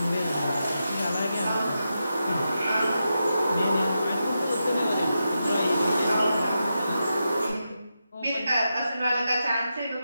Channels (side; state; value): both; inverted; correlation -0.88